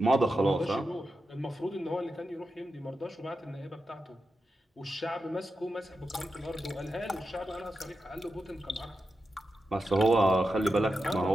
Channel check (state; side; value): normal; both; correlation 0.89